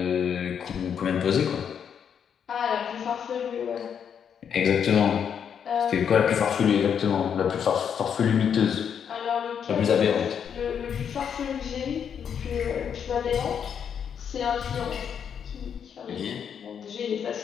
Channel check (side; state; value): right; quieter; 7.8 dB